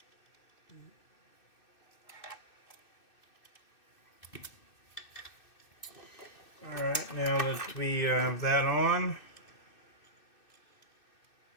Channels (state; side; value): late; right; 2.6 ms